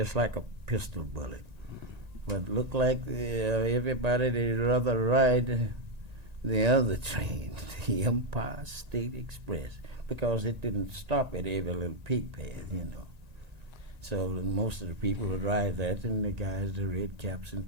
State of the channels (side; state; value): left; late; 1.9 ms